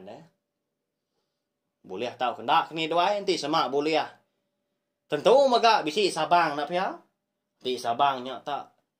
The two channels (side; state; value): both; identical; correlation 1.00